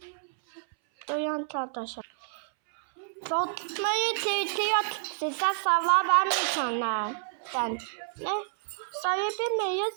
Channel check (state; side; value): silent; left; 58 dB below the other